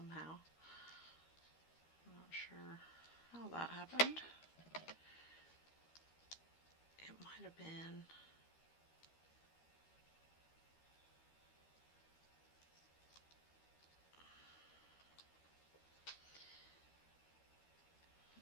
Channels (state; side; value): late; right; 13 ms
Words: I'm not sure how that happened. It might have been